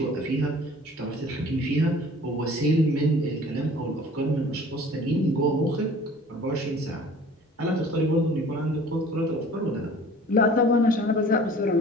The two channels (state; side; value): normal; both; correlation 0.48